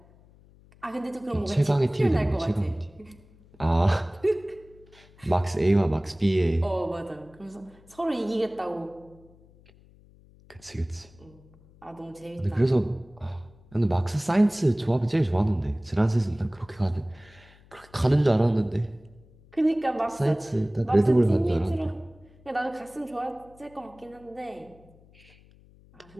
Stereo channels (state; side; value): noise; left; hum, 26 dB below the sound